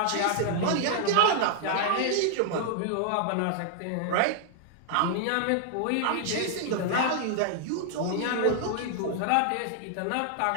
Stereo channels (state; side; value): different; both; correlation 0.00